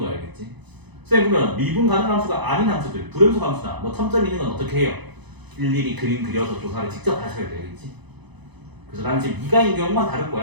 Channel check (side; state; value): left; late; 0.99 ms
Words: 알겠지? 선생님 그러면 미분 가능한 함수가 아닌 함수들, 불연속 함수나 뭐 첨점 있는 건 어떻게 해요? 일일이 그림 그려서 조사를 직접 하셔야 돼, 알겠지? 그래서 나는 지금 미가인 경우만 다룰